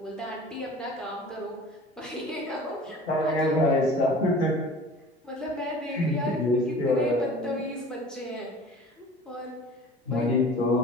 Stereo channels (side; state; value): both; normal; correlation 0.43